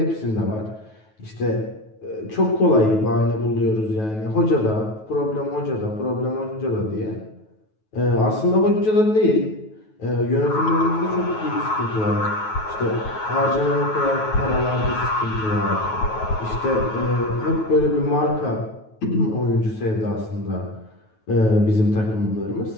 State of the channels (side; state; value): right; late; 9.3 ms